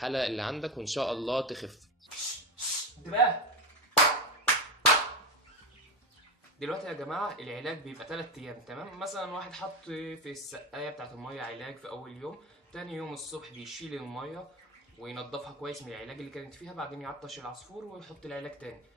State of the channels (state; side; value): normal; both; correlation 0.18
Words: اللي عندك وإن شاء الله تخف. انتباه! دلوقتي يا جماعة العلاج بيبقى 3 أيام، تمام. مثلا واحد حط في السقاية بتاعت المية علاج في أول يوم، تاني يوم الصبح بيشيل المية وينضفها كويس من العلاج اللي كانت فيها، بعدين يعطش العصفور ويحط العلاج تاني.